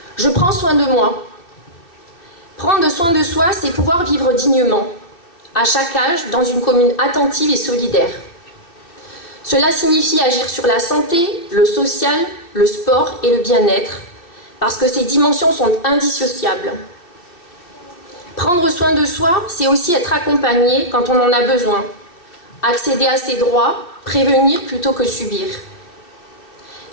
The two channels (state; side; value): late; right; 2.8 ms